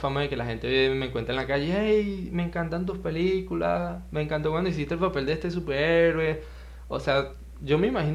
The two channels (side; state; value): both; identical; correlation 1.00